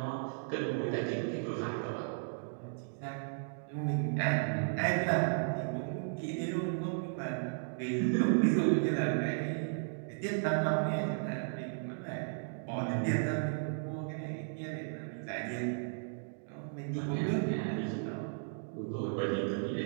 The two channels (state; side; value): silent; left; digital silence